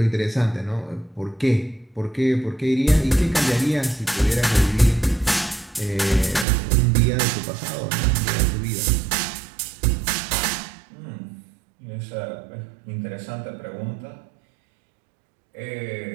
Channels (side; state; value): left; drops out; at 6.5 s